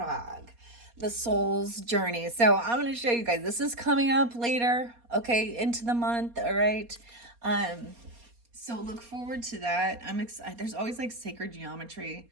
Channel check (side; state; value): left; late; 4.2 ms